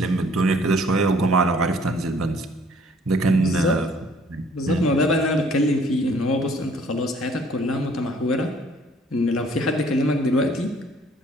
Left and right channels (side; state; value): both; normal; correlation 0.58